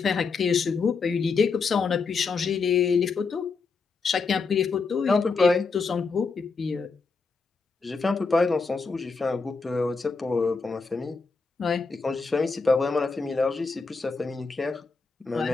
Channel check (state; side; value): quieter; right; 4.6 dB